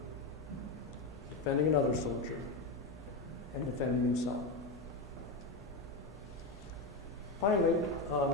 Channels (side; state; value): right; quieter; 3.3 dB